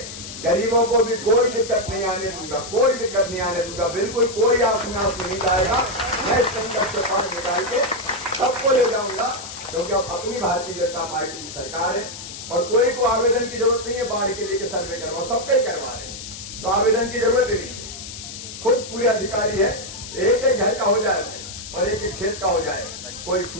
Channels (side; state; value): left; noise; hiss, 11 dB below the sound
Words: गरीबों को भी कोई दिक्कत नहीं आने दूंगा, कोई दिक्कत नहीं आने दूंगा, बिल्कुल कोई आपना नहीं जाएगा। मैं इस संकट से पार निकाल के सबको ले जाऊंगा, क्योंकि अब अपनी भारतीय जनता पार्टी की सरकार है और कोई को आवेदन की जरूरत नहीं है बाढ़ के लिए कि सर्वे करवा, सबके करवा रहे हैं, तो आवेदन की जरूरत ही नहीं है। खुद पूरे अधिकारी है, एक एक घर का हो जाए और एक एक खेत का हो जाए, कोई